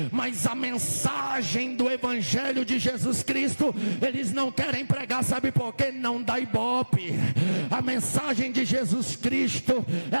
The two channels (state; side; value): inverted; both; correlation -1.00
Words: mas a mensagem do Evangelho de Jesus Cristo, eles não querem pregar, sabe por quê? Não dá ibope. A mensagem de Jesus Cristo,